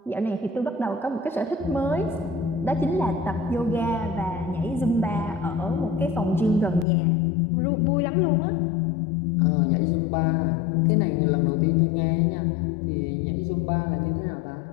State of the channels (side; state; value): right; drops out; at 6.9 s